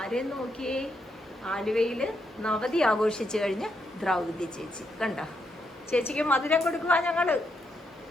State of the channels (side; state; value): both; normal; correlation 0.79